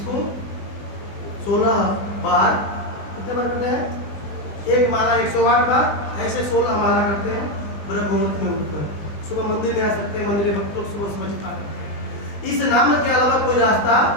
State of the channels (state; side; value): late; right; 20 ms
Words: 16 बार कितने बार करते हैं? एक माला 108 बार, ऐसे 16 माला करते हैं ब्रह्म मुहूर्त में उठकर। सुबह मंदिर में आ सकते हैं, मंदिर में भक्त लोग सुबह सुबह जपा करते हैं। इस नाम के अलावा कोई रास्ता